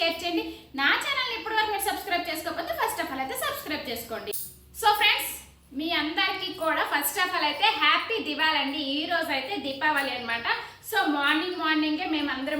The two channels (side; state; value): both; identical; correlation 1.00